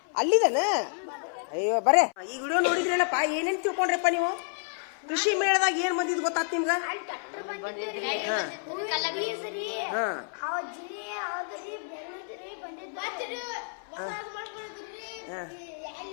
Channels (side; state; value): right; silent; 58 dB below the other